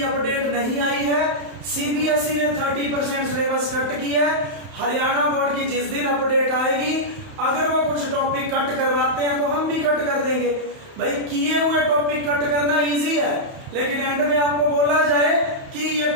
अपडेट नहीं आई है। CBSE ने 30% सिलेबस कट किया है। हरियाणा बोर्ड की जिस दिन अपडेट आएगी, अगर वो कुछ टॉपिक कट करवाते हैं तो हम भी कट कर देंगे। भाई किए हुए टॉपिक कट करना इजी है, लेकिन एंड में आपको बोला जाए कि ये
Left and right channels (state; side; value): late; left; 31 ms